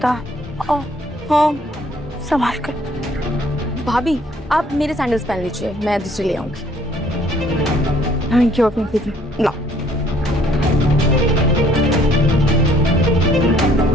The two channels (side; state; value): both; normal; correlation 0.61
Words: हाँ, संभाल कर। भाभी आप मेरे सैंडल्स पहन लीजिए, मैं दूसरे ले आऊंगी। थैंक यू अपनी दीदी। ला।